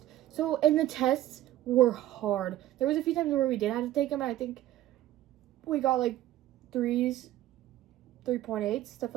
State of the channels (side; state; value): left; quieter; 14.1 dB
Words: So, and the tests were hard. There was a few times where we did have to take them. And I think we got like 3s, 3.8, stuff